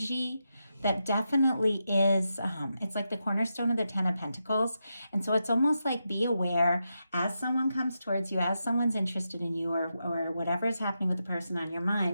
that definitely is, it's like the cornerstone of the 10 of Pentacles. And so it's almost like be aware as someone comes towards you, as someone's interested in you, or whatever is happening with the person on your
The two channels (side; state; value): both; inverted; correlation -0.86